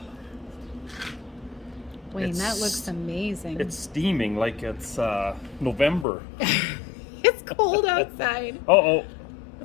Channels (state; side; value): drops out; right; at 6.1 s